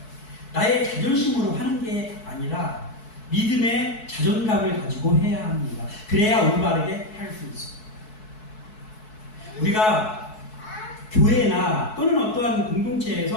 나의 자존심으로 하는 게 아니라 믿음의 자존감을 가지고 해야 합니다. 그래야 올바르게 할 수 있어요. 우리가 교회나 또는 어떠한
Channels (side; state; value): right; late; 4.6 ms